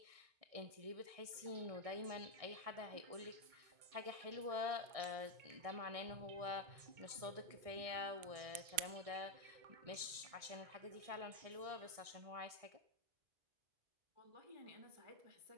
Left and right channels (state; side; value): late; left; 1.6 ms